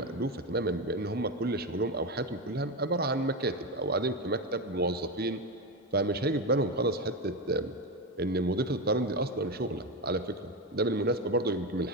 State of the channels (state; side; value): normal; both; correlation 0.15